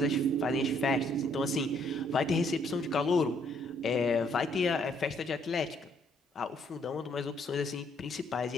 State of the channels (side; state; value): both; normal; correlation 0.67